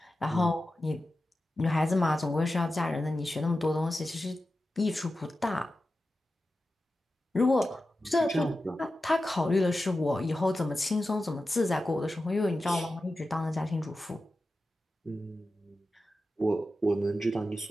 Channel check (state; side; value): normal; both; correlation 0.93